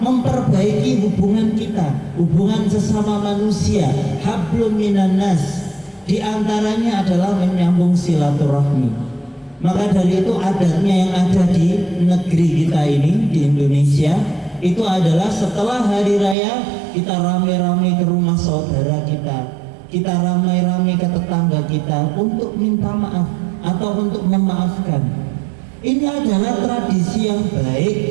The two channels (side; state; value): left; drops out; at 16.4 s